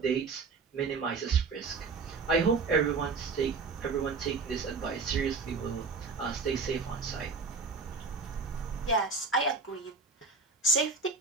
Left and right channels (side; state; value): left; quieter; 4.4 dB